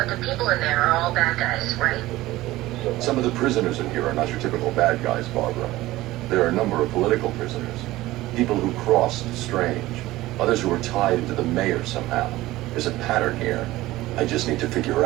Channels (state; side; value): quieter; left; 17.4 dB